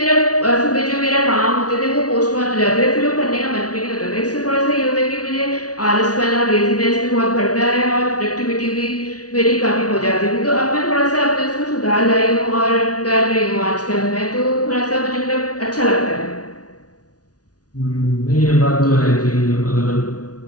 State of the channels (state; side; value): late; right; 0.68 ms